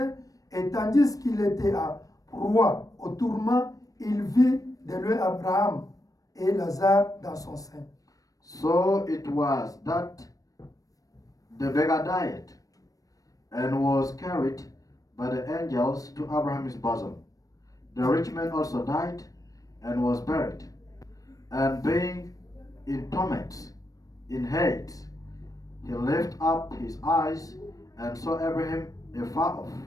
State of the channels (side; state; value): right; late; 0.17 ms